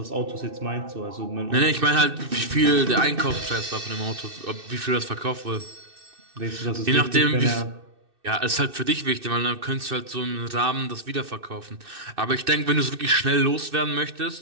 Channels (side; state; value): left; late; 2.6 ms